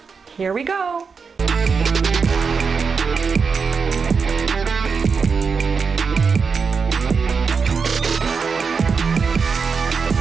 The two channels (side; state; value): left; quieter; 5.4 dB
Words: Here we go!